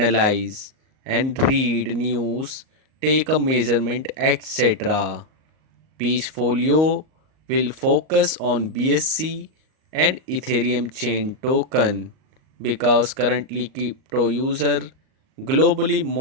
and read news, take a measurement, etc. Peachfolio will focus on BSC and Ethereum chain token because currently crypto user globally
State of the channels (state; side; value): late; left; 38 ms